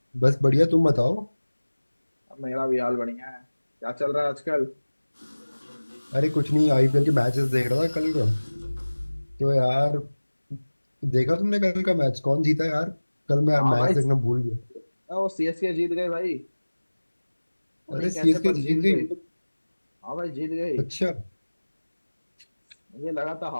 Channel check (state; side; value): inverted; both; correlation -1.00